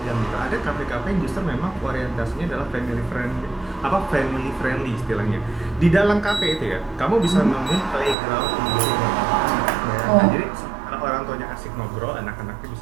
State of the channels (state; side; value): drops out; left; at 8.2 s